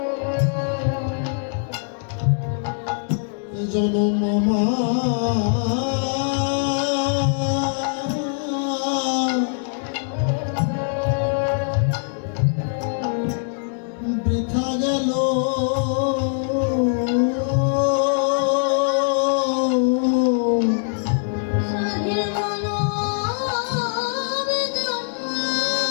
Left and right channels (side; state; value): right; silent; digital silence